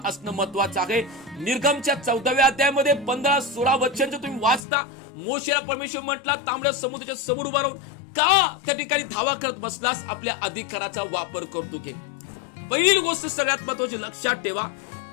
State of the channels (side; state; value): right; drops out; at 4.6 s